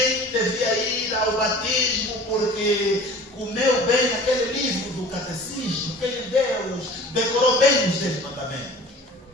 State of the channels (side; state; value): both; normal; correlation 0.43